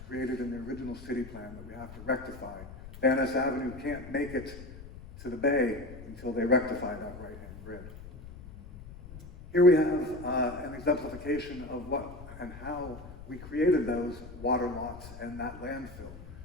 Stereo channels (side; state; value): left; noise; rumble, 15 dB below the sound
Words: created in the original city plan that we have to rectify. Van Ness Avenue can't make it to the bay until they rectify that right-hand grid. Here we have an exemplification of what and how we created those water lots and that landfill.